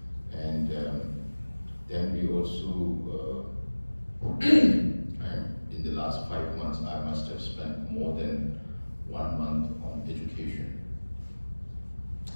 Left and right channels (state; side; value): inverted; both; correlation -1.00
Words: And then we also also, in the last 5 months, I must have spent more than 1 month on education.